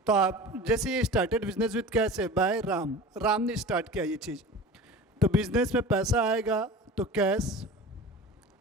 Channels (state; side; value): normal; both; correlation 0.36